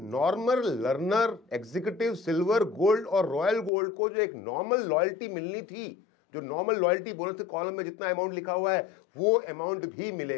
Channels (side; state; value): right; drops out; at 3.7 s